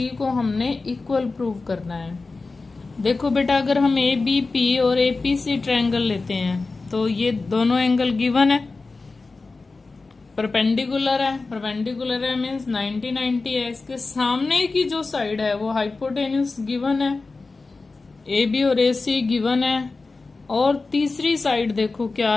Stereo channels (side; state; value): right; quieter; 3.8 dB